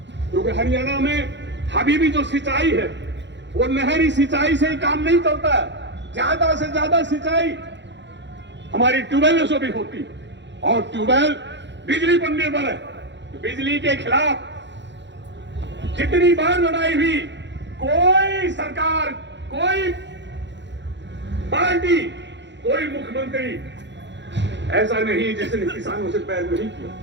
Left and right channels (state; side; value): late; left; 0.52 ms